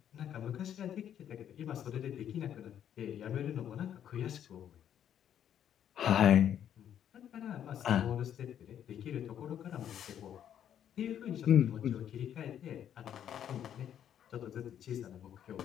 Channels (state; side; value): quieter; right; 9.8 dB